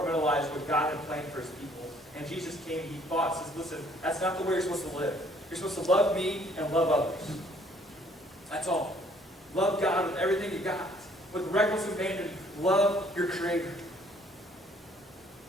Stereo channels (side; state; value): both; normal; correlation 0.61